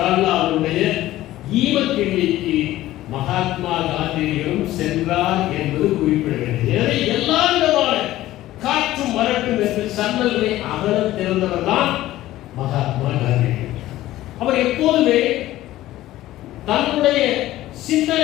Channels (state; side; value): quieter; right; 15.3 dB